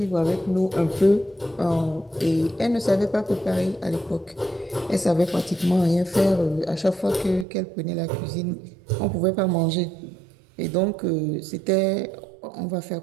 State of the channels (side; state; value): left; drops out; at 7.5 s